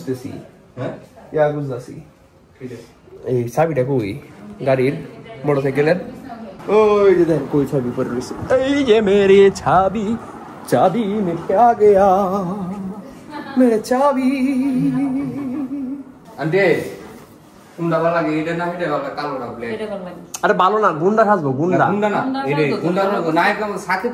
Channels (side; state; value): both; identical; correlation 1.00